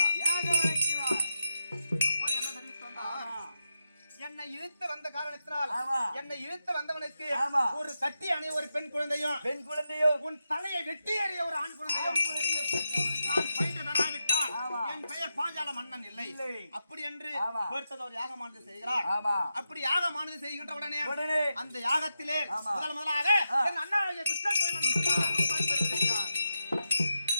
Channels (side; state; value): both; inverted; correlation -0.87